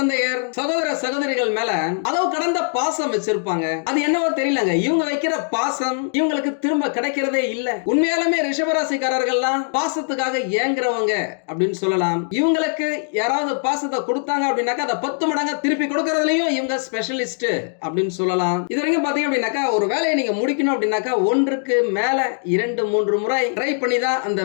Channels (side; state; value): right; silent; digital silence